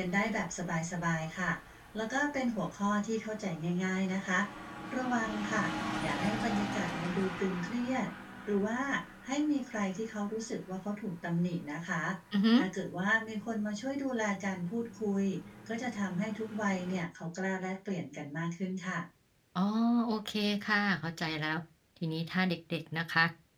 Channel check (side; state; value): both; identical; correlation 1.00